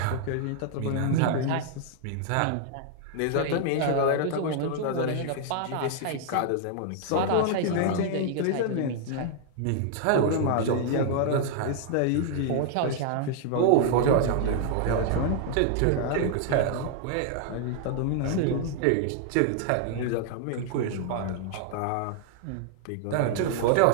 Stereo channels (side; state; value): both; different; correlation 0.00